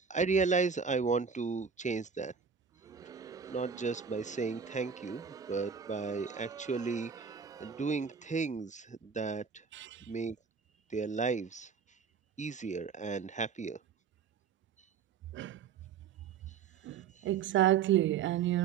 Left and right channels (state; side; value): quieter; left; 6.4 dB